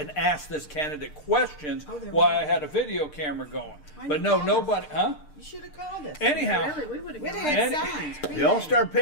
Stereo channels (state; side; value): late; right; 6.7 ms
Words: asked this candidate questions while I had a video camera going. But no, nobody, You should have called us. Anyhow, Really, we would have We'd gone. have had signs. The all-star